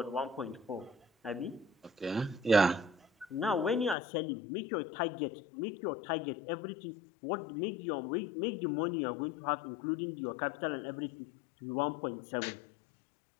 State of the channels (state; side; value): drops out; right; at 4.0 s